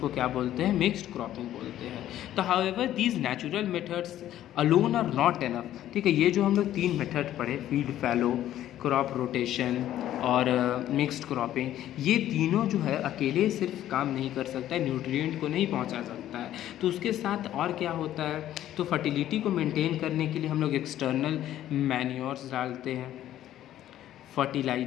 क्या बोलते हैं, मिक्स्ड क्रॉपिंग बोलते हैं। तो however these natural methods alone are not enough, ठीक है, ये जो हम लोग 3 मेथड पढ़े, फील्ड फैलो, क्रॉप रोटेशन और मिक्स्ड क्रॉपिंग, ये तीनों जो है अकेले सिर्फ काम नहीं कर सकता है, न्यूट्रिएंट को नहीं पहुंचा सकता है। तो उसके साथ और क्या होता है, तो फर्टिलिटी को मेंटेन करने के लिए हम लोग एक्सटर्नल मैन्योर्स डालते हैं,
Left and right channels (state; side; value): quieter; right; 12.5 dB